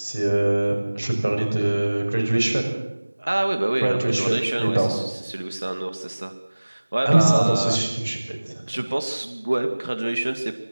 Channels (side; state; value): both; inverted; correlation -1.00